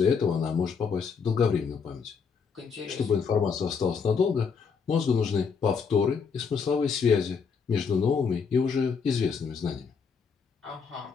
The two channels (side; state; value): right; quieter; 5.9 dB